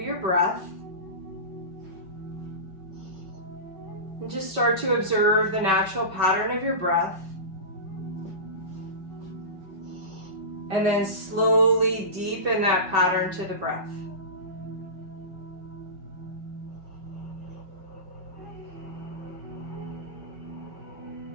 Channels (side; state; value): left; late; 5.3 ms